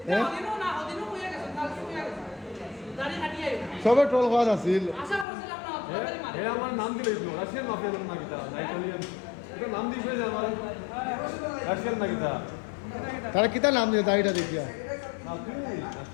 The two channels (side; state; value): right; drops out; at 5.2 s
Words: হ্যাঁ সবে ট্রল হওয়ার আছিল এ আমার নাম দিলে রাশিয়ান মাফিয়া না কিতা ইটালিয়ান এটা নাম দিছে যে আমার রাশিয়ান না কিতা তারা কিতা নাম দিয়ে দাড়িটা দেখিয়া না তুই